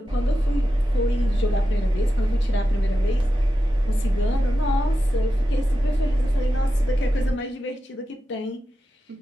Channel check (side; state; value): both; normal; correlation 0.91